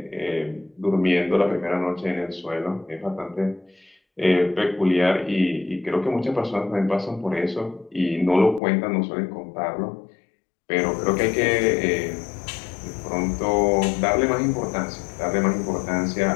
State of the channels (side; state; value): right; drops out; at 8.6 s